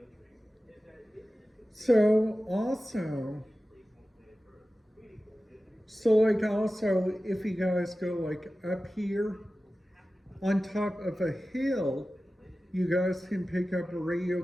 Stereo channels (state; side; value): normal; both; correlation 0.95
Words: So also, if you guys go like up here on top of a hill, you guys can pick up a radio